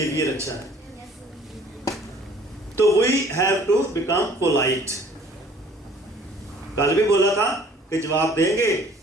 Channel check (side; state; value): both; normal; correlation 0.54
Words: अच्छा है। तो we have to become polite. कल भी बोला था कि जवाब देंगे